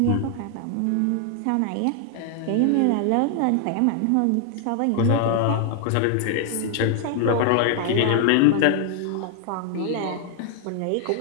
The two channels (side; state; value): both; different; correlation 0.00